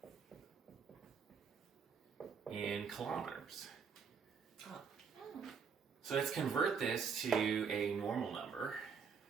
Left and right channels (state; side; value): quieter; left; 6.1 dB